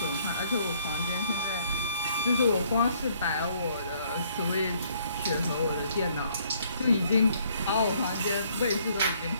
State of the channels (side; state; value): both; inverted; correlation -0.65